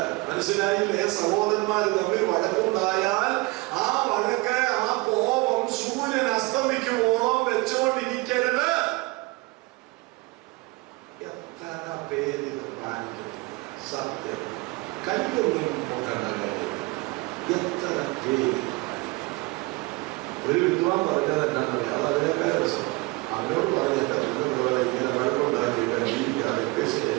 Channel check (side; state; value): left; quieter; 24.1 dB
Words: മനസ്സിലായില്ലേ? സഹോദരന്മാർ തമ്മിൽ വഴക്കുണ്ടായാൽ ആ വഴക്ക്, ആ കോപം സൂര്യൻ അസ്തമിക്കുമ്പോഴും വെച്ചുകൊണ്ടിരിക്കരുത്. എത്ര പേരിത് പാലിക്കുന്നു? സത്യം കയ്യൊന്നും നോക്കേണ്ട കാര്യം. എത്ര പേര് ഒരു വിദ്വാൻ പറഞ്ഞത് എന്താണെന്നറിയാം. അത് അതിനേക്കാൾ രസം. അവനോട് പറഞ്ഞിട്ട് ഇങ്ങനെ വഴക്കുണ്ടാക്കി ജീവിക്കാതെ